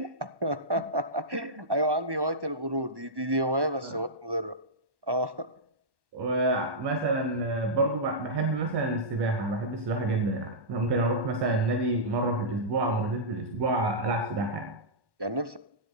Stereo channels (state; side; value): late; left; 1.1 ms